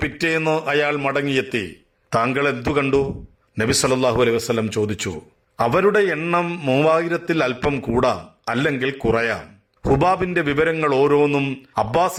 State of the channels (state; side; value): identical; both; correlation 1.00